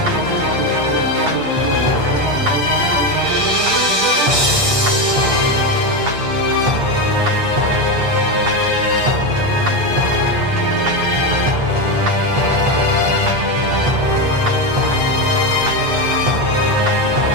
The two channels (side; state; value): left; late; 8.4 ms